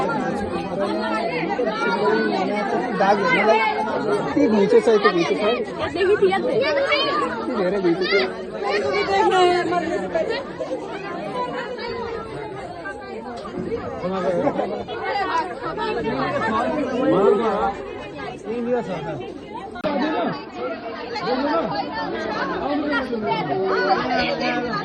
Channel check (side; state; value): both; identical; correlation 1.00